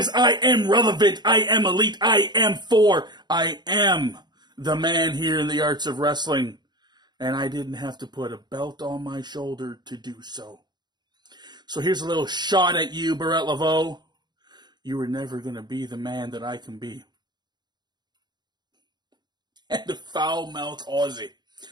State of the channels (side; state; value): left; late; 0.21 ms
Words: I am relevant, I am elite, I am the man here in the arts of wrestling. And I didn't have to put a belt on my shoulder to do so. So here's a little shot at you, Barrett Laveau. You were never going to be the man that I can be. And the foul-mouthed Aussie.